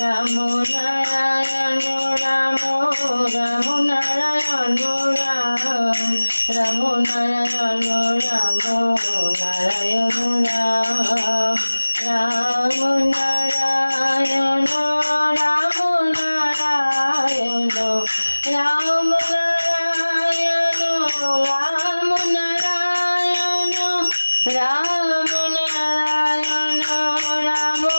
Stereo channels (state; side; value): inverted; both; correlation -1.00